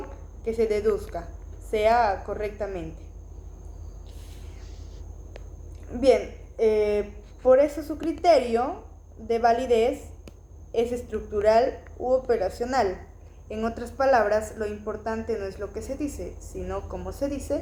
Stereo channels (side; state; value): both; identical; correlation 1.00